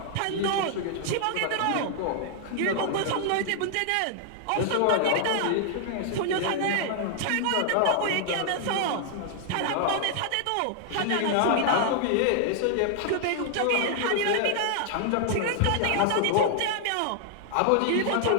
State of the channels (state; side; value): different; both; correlation -0.01